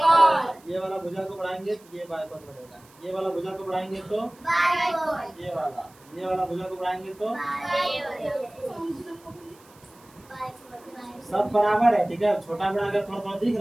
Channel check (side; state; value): right; noise; hiss, 27 dB below the sound